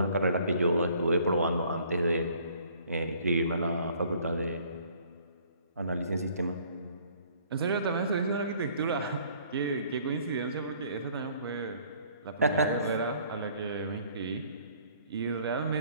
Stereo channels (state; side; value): inverted; both; correlation -0.59